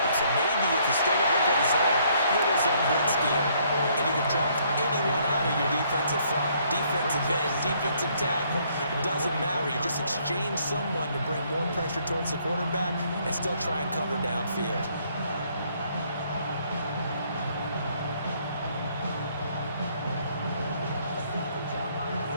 up. So maybe if you still want to play zone, go to zone blitz scheme, and you can drop anyone out of your defensive front. Defensive end, defensive tackle. It doesn't matter. You just exchange someone to bring more pressure towards the quarterback and still try and cover downfield.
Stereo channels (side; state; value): both; inverted; correlation -0.66